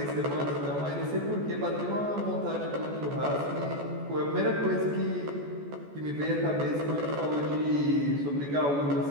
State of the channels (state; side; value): late; left; 14 ms